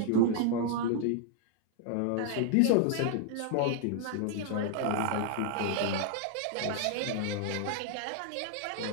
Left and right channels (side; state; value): both; different; correlation 0.00